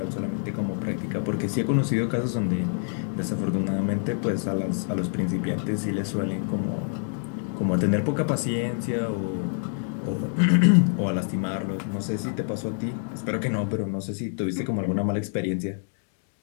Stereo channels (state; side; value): silent; right; 61 dB below the other